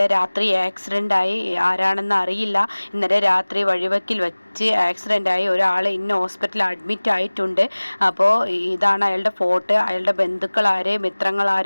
രാത്രി ആക്സിഡൻ്റായി, ആരാണെന്ന് അറിയില്ല, ഇന്നലെ രാത്രി വഴിവെക്കിൽ വെച്ച് ആക്സിഡൻ്റായി ഒരാൾ ഇന്ന ഹോസ്പിറ്റലിൽ അഡ്മിറ്റ് ആയിട്ടുണ്ട്. അപ്പോൾ ഇതാണ് അയാളുടെ ഫോട്ടോ. അയാളുടെ ബന്ധുക്കളാരെ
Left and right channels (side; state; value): both; inverted; correlation -1.00